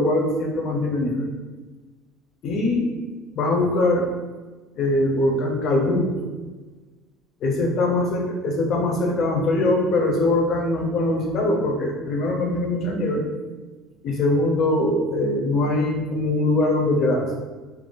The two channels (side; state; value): both; normal; correlation 0.43